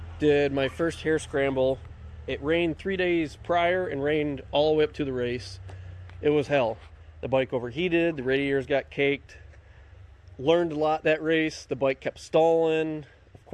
Did my first hare scramble. It rained 3 days prior and rained all the way up to the race. It was hell. The bike overheated, the radiators got caked. Learned a lot that race. The bike kept stalling. Of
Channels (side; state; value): both; identical; correlation 1.00